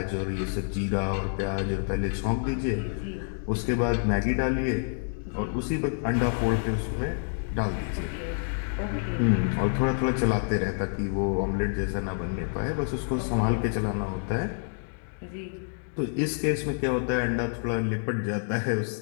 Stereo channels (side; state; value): right; silent; digital silence